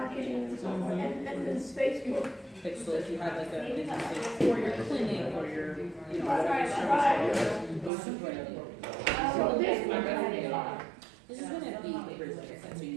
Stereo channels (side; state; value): left; drops out; at 7.9 s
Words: and so forth, and this Facebook. Okay, so if you have like a business like for your clinic or your, you know, whatever Right. service, it's super important. So this one, This is gonna be great, like I said, so